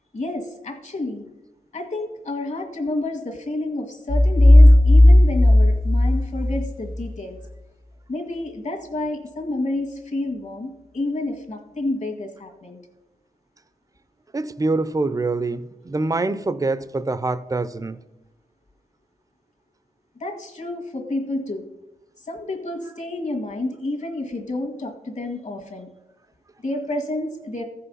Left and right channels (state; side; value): normal; both; correlation 0.94